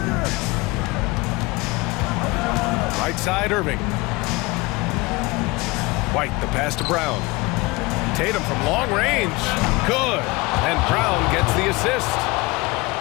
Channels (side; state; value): right; quieter; 23.7 dB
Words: Right side, Irving. White, the pass to Brown. Tatum from long range. Good. And Brown gets the assist.